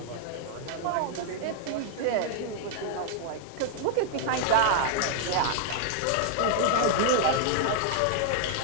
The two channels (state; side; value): different; both; correlation 0.00